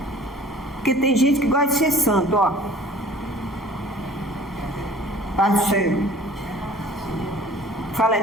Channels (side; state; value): both; normal; correlation 0.49